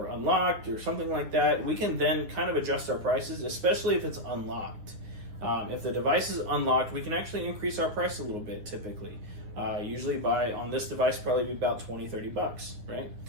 Unlocked or something like that, we can then kind of adjust our prices, especially if it's unlocked. If the device is unlocked, we can actually increase our price a little bit typically. Usually on this device, probably be about $20, $30, right?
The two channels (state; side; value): late; left; 9.6 ms